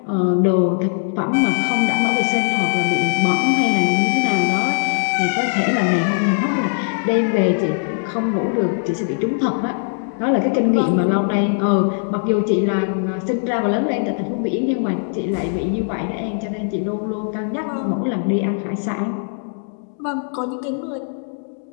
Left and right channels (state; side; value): silent; right; digital silence